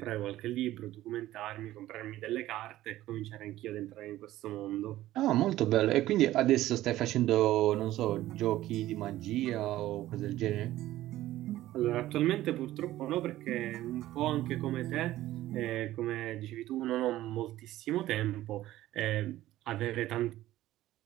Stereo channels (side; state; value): left; quieter; 15.0 dB